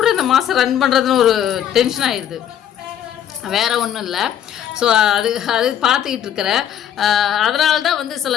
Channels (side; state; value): right; quieter; 10.1 dB